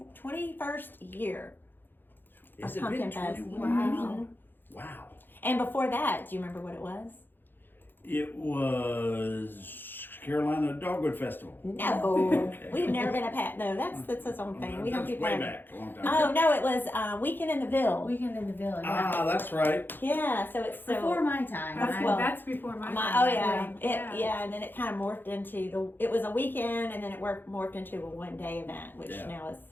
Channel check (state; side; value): late; right; 0.096 ms